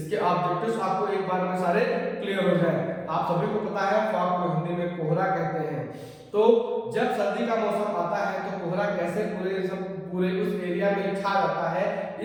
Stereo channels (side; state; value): both; identical; correlation 1.00